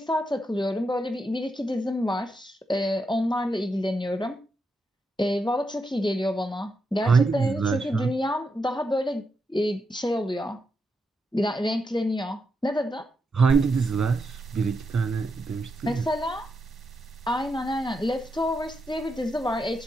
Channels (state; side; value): normal; both; correlation 0.84